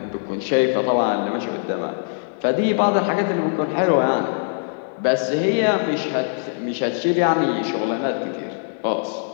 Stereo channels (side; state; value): right; silent; digital silence